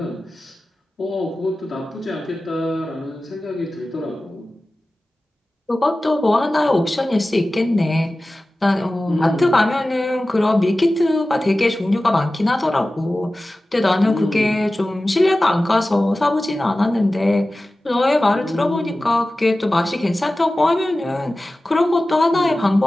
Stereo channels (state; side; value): normal; both; correlation 0.96